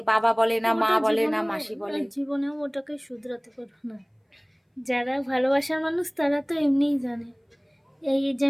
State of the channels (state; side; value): identical; both; correlation 1.00